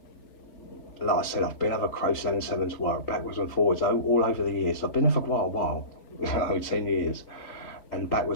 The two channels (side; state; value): right; late; 3.8 ms